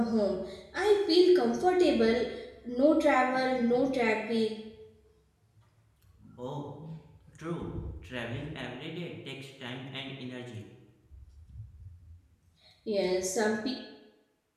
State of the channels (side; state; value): both; identical; correlation 1.00